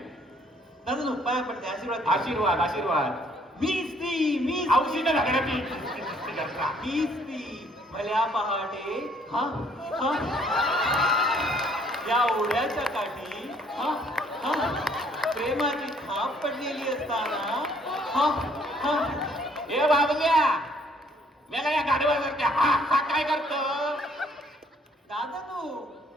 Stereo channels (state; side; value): normal; both; correlation 0.63